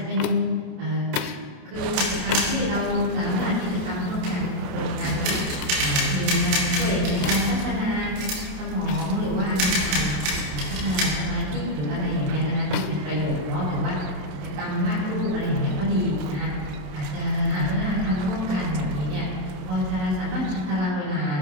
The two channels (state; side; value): late; left; 27 ms